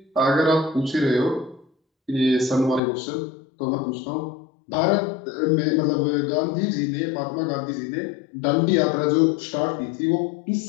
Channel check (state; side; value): drops out; right; at 2.8 s